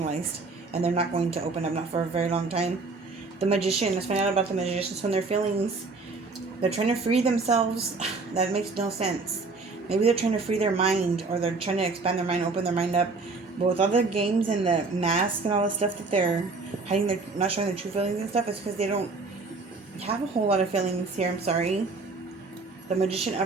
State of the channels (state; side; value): quieter; left; 3.9 dB